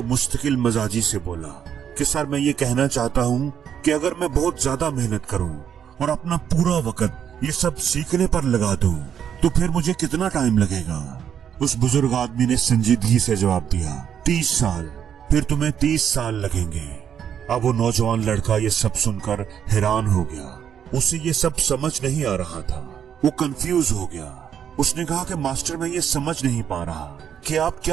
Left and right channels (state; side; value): quieter; left; 8.7 dB